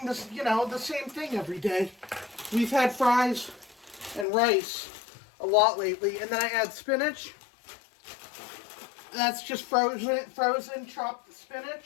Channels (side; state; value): right; drops out; at 4.2 s